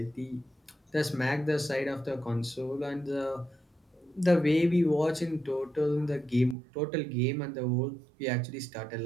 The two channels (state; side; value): drops out; left; at 6.6 s